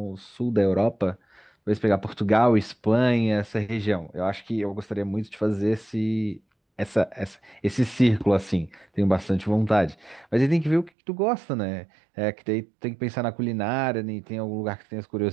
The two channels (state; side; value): drops out; left; at 10.9 s